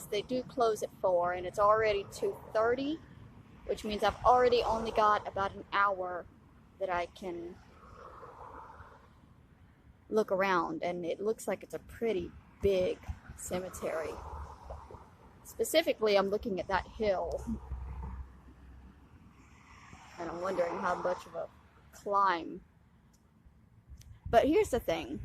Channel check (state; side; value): identical; both; correlation 1.00